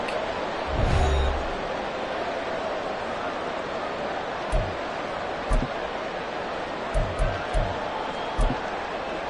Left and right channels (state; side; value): identical; both; correlation 1.00